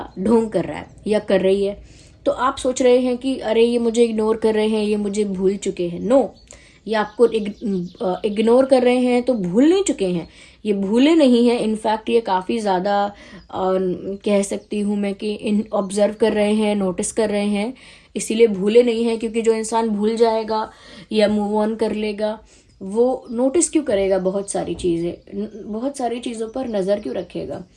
ढोंग कर रहा है या कर रही है. तो आप सोच रहे हैं कि अरे ये मुझे इग्नोर कर रहे हैं, ये मुझे भूल चुके हैं. नो, ये आपको इग्नोर कर रहे हैं तो भूल नहीं चुके हैं, ये भूले नहीं हैं. इनफैक्ट ये काफ़ी ज़्यादा कह सकती हूँ मैं कि ऑब्जर्व कर रहे हैं, नोटिस कर रहे हैं, इसीलिए भूले नहीं हैं. क्योंकि जो इंसान भूल जाएगा या मूव ऑन कर लेगा, वो नोटिस क्यों करेगा बहुत सारी चीज़ें, बहुत सारी चीज़ों पर नज़र क्यों रखेगा.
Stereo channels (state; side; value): identical; both; correlation 1.00